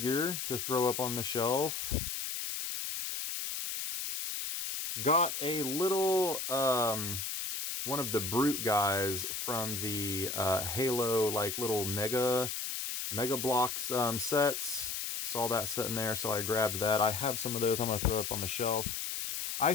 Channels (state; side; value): noise; left; hiss, 3 dB below the sound